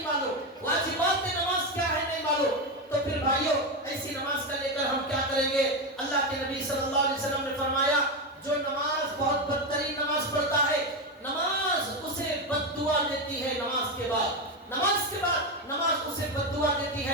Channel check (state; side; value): normal; both; correlation 0.12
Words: معلوم, واجبات نماز کیا ہے نہیں معلوم. تو پھر بھائیوں ایسی نماز کا لے کر ہم کیا کریں گے؟ اللہ کے نبی صلی اللہ علیہ وسلم نے فرمایا جو نماز بہت بدترین نماز پڑھتا ہے, نماز اسے بد دعا دیتی ہے. نماز کے بعد نماز اسے بد دعا دیتی